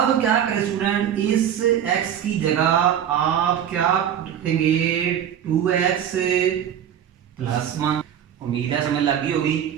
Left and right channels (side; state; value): left; quieter; 9.5 dB